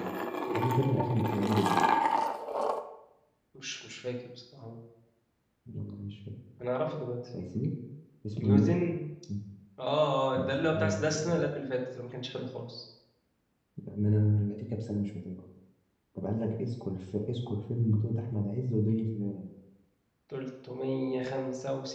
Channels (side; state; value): both; identical; correlation 1.00